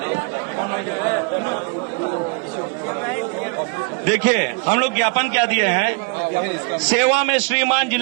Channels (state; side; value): quieter; left; 33.7 dB